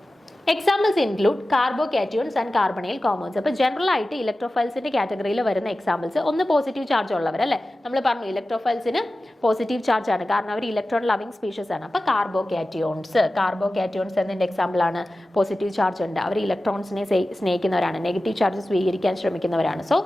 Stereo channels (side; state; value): both; normal; correlation 0.95